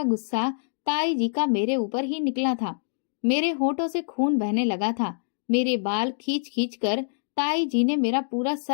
गुस्सा ताई जी का मेरे ऊपर ही निकला था। मेरे होठों से खून बहने लगा था। मेरे बाल खींच खींच कर ताई जी ने मेरा पूरा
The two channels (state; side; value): silent; right; digital silence